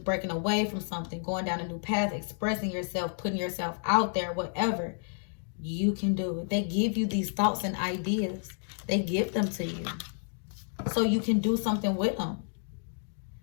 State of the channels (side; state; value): right; silent; 57 dB below the other